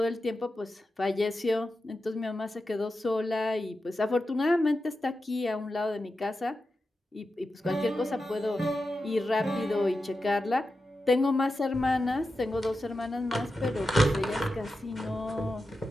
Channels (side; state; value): both; normal; correlation 0.90